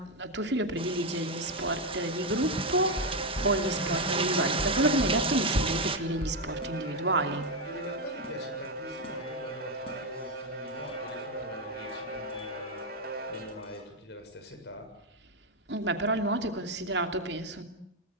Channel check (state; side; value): normal; both; correlation 0.06